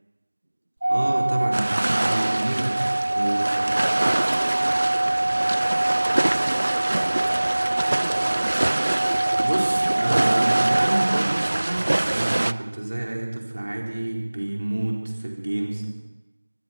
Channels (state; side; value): inverted; both; correlation -1.00